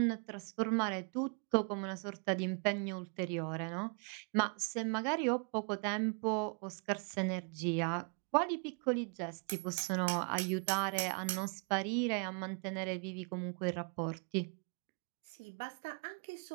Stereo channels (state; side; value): quieter; left; 33.4 dB